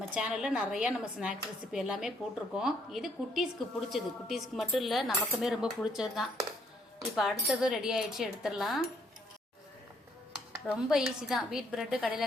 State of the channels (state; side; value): normal; both; correlation 0.69